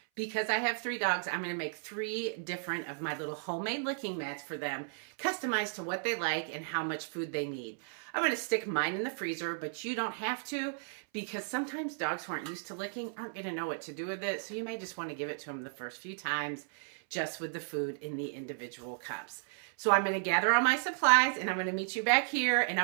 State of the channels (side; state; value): left; silent; 55 dB below the other